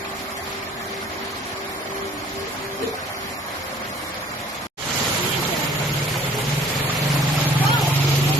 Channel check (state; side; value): normal; both; correlation 0.54